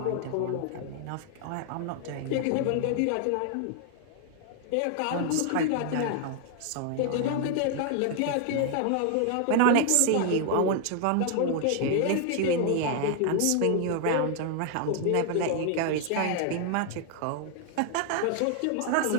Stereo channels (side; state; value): both; different; correlation 0.00